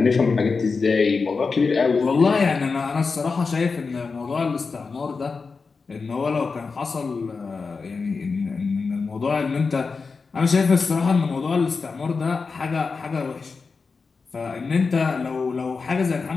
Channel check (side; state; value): right; quieter; 4.7 dB